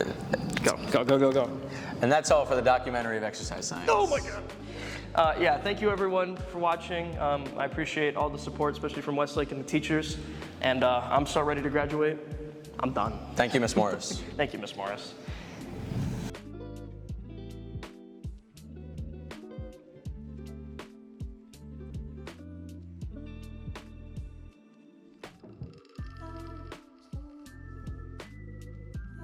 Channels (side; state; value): both; identical; correlation 1.00